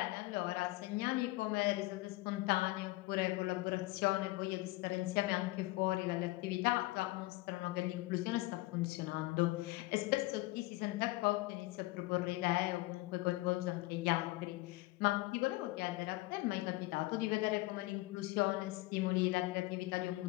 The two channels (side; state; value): right; quieter; 20.5 dB